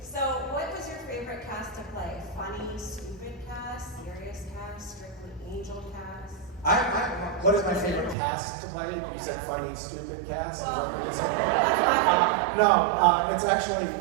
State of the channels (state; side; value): drops out; left; at 8.2 s